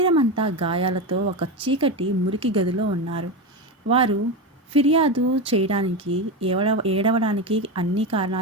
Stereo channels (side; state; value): both; normal; correlation 0.17